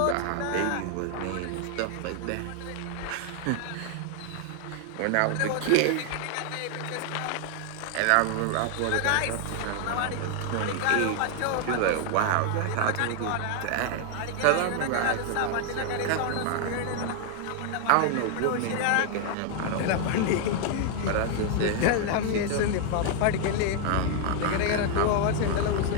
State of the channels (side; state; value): both; different; correlation 0.00